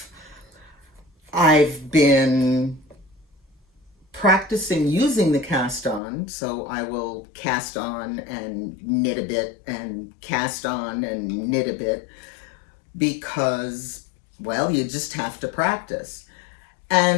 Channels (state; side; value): drops out; right; at 6.0 s